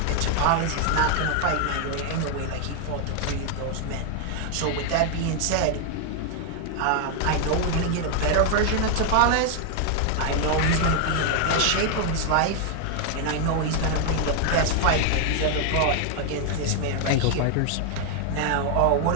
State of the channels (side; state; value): both; different; correlation 0.00